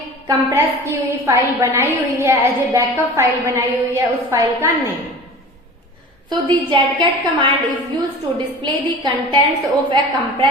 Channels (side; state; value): both; normal; correlation 0.38